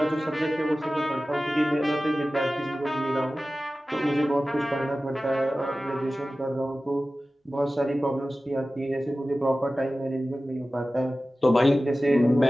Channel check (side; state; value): both; normal; correlation 0.96